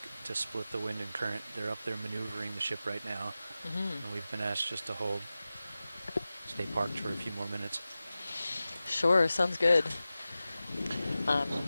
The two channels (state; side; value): inverted; both; correlation -0.95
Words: to split the wind and current. They're up there maneuvering the ship right now. And we've been asked just to stay parked for a few more minutes. Sure, sounds good.